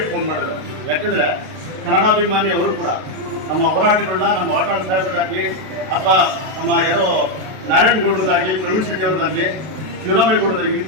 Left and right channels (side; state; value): left; late; 32 ms